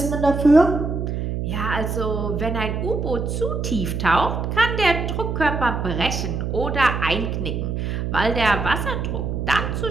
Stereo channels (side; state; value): right; noise; hum, 2 dB below the sound